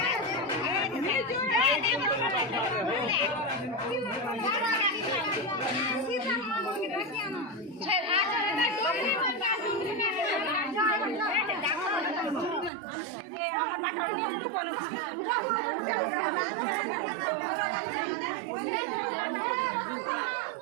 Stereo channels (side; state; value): left; drops out; at 12.7 s